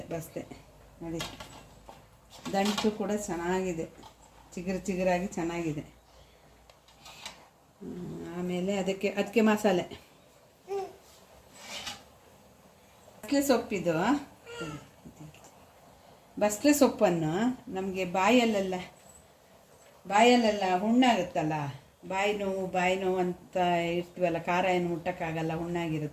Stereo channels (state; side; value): identical; both; correlation 1.00